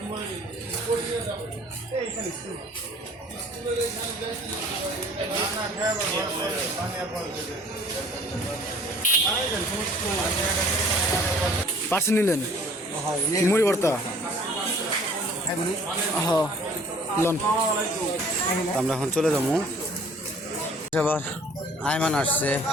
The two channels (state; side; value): normal; both; correlation 0.52